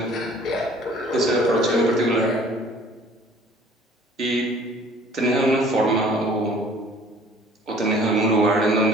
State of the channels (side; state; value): both; normal; correlation 0.53